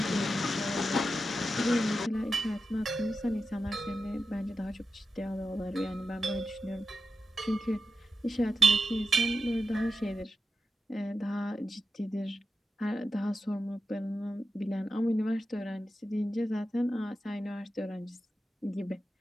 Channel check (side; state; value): both; normal; correlation 0.90